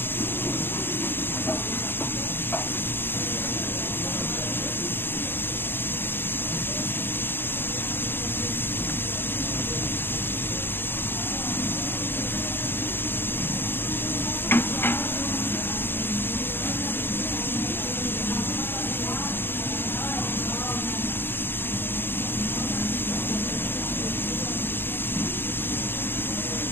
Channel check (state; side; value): late; right; 0.10 ms